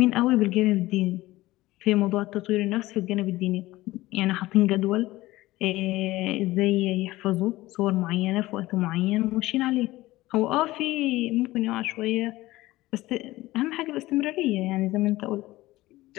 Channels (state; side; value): quieter; right; 18.0 dB